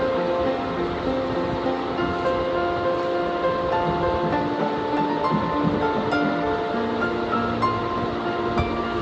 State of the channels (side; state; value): both; identical; correlation 1.00